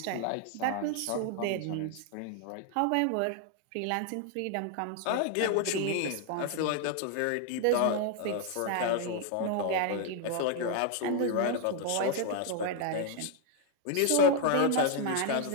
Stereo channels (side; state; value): both; different; correlation 0.00